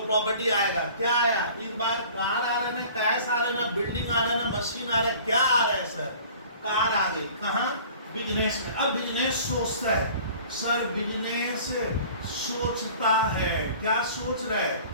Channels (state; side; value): inverted; both; correlation -0.47